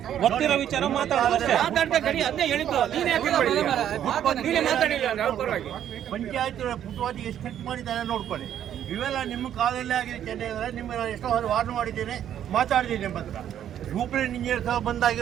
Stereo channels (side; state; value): left; quieter; 10.4 dB